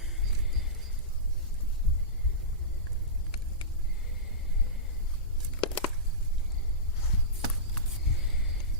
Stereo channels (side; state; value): both; normal; correlation -0.18